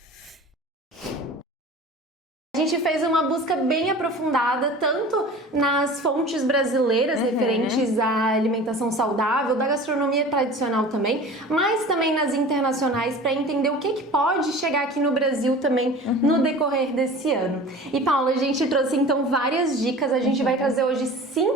A gente fez uma busca bem aprofundada, tanto nas fontes brasileiras referentes à alimentação saudável, da gastronomia tradicional também, mas também nas internacionais, para entender o que pode chegar aqui no Brasil também no decorrer desse ano. E Paula, a gente trouxe então várias dicas, a gente vai trazer hoje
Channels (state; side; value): normal; both; correlation 0.39